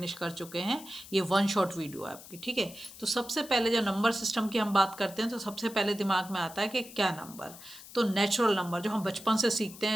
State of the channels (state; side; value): noise; left; hiss, 17 dB below the sound